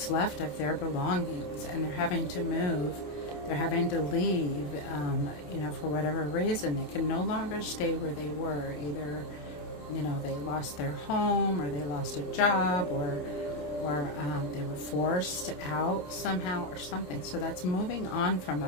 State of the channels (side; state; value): right; late; 27 ms